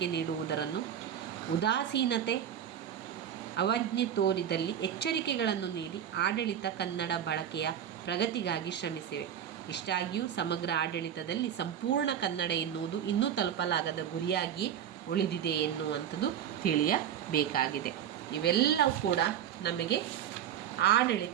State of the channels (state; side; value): quieter; left; 9.4 dB